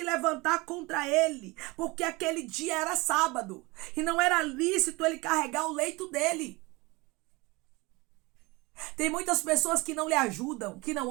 levantar contra ele, porque aquele dia era sábado e não era lícito ele carregar o leito dele. Tem muitas pessoas que não lhe ajudam, que não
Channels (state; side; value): quieter; left; 24.0 dB